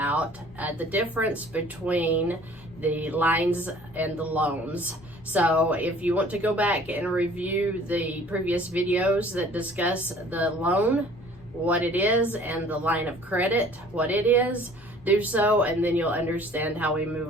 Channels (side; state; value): both; normal; correlation 0.52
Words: the difference between the lines and the loans. So if you want to go back and review the previous videos that discuss the loan, what it is, and the line of credit, what it is, do so, and then you'll understand how we move